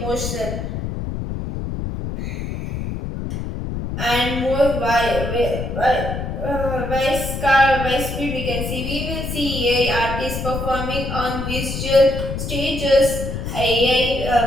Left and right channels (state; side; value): noise; left; rumble, 5 dB below the sound